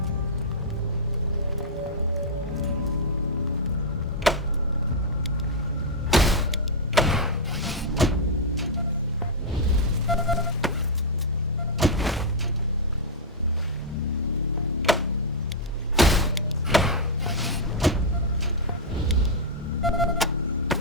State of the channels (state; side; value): normal; both; correlation -0.06